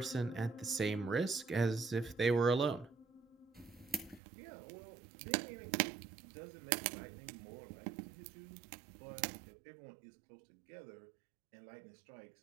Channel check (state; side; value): drops out; left; at 4.2 s